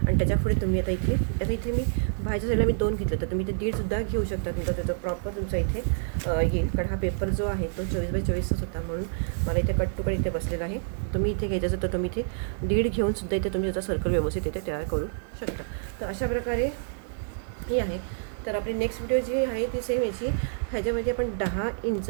आणि त्याच्यापुढे तुम्ही आता इथे मी बाहेरच्या साईडला मी 2 घेतले तर तुम्ही इथे 1.5सुद्धा घेऊ शकता. तुमचा त्याचा प्रॉपर तुमचा इथे येईल. कारण हा पेपर जो आहे तो 24x24च होता म्हणून मला इथे कट टू कट इथे बसलेला आहे. तुम्ही इथे घ्यायचं असेल तर तुम्ही इथे 1.5 घेऊन सुद्धा इथे तुम्ही त्याचा सर्कल व्यवस्थित इथे तयार करू शकता. तर अशा प्रकारे ही आहे. तर आपली नेक्स्ट व्हिडिओ जी आहे ती सेम याची ह्याच्यामध्ये आपण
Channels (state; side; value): silent; left; digital silence